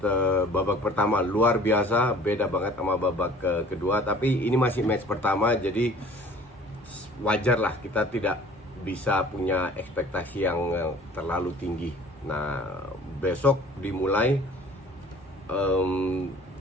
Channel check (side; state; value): both; normal; correlation 0.49